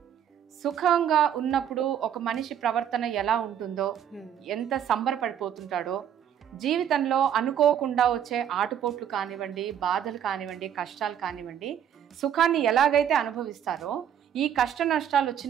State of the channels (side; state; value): left; quieter; 9.3 dB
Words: సుఖంగా ఉన్నప్పుడు ఒక మనిషి ప్రవర్తన ఎలా ఉంటుందో, ఎంత సంబరపడిపోతుంటాడో, జీవితంలో అనుకోకుండా వచ్చే ఆటుపోట్లు కానివ్వండి, బాధలు కానివ్వండి, కష్టాలు కానివ్వండి, సుఖాన్ని ఎలాగైతే అనుభవిస్తారో, ఈ కష్ట నష్టాలు